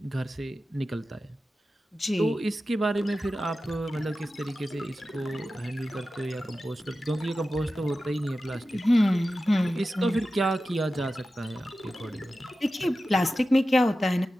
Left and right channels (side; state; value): both; normal; correlation 0.93